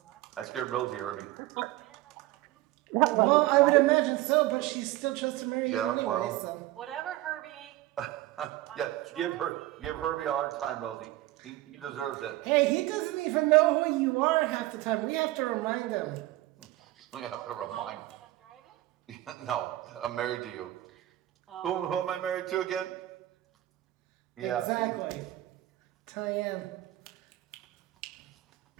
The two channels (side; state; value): left; quieter; 16.7 dB